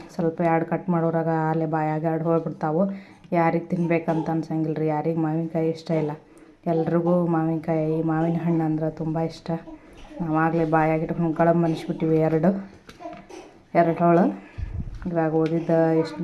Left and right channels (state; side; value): identical; both; correlation 1.00